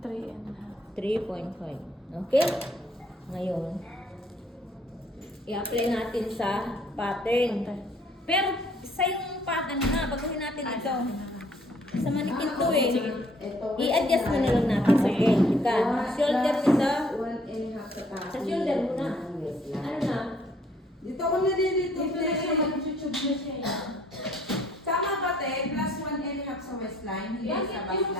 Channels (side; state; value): both; normal; correlation 0.62